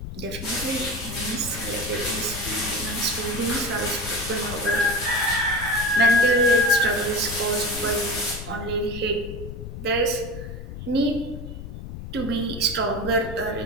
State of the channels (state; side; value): noise; left; rumble, 9 dB below the sound